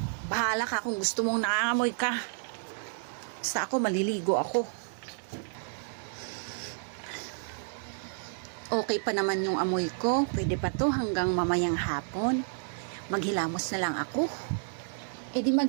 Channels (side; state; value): left; silent; digital silence